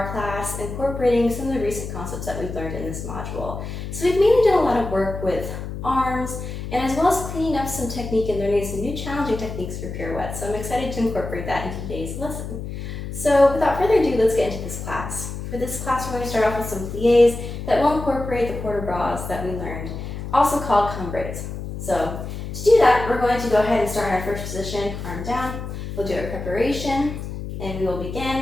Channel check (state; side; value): noise; left; hum, 7 dB below the sound